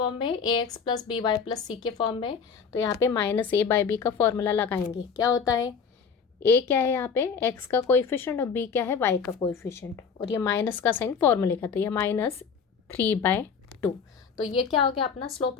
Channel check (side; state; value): right; quieter; 6.0 dB